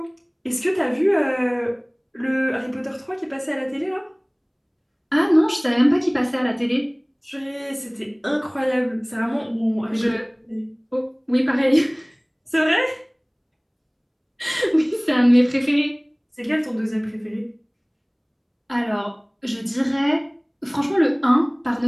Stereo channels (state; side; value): identical; both; correlation 1.00